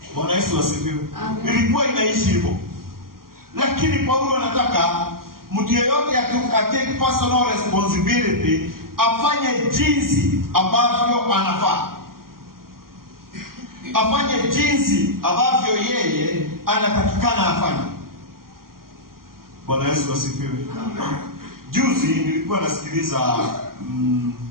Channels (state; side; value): late; left; 0.92 ms